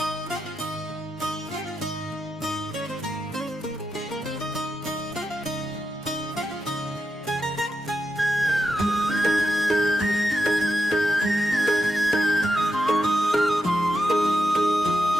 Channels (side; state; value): both; normal; correlation 0.86